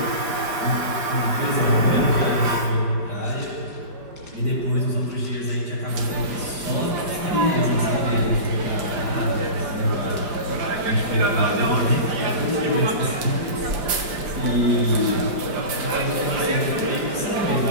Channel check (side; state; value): left; late; 5.0 ms